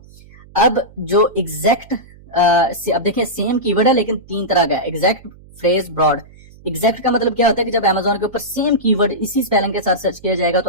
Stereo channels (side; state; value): right; noise; hum, 23 dB below the sound